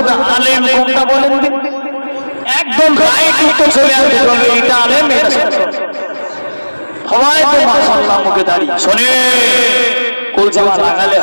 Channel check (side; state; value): both; inverted; correlation -1.00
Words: আলেম কোনটা বলেন? একদম রাইট উত্তর চলে আসবে, এটা আলেম, এটা সবাই তো মাশাআল্লাহ মুখে দাঁড়িয়ে। শোনে, গোল জামা লাগালে